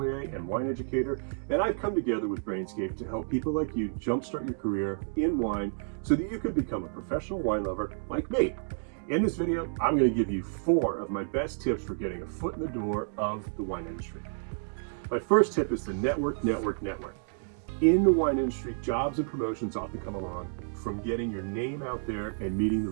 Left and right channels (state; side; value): silent; left; digital silence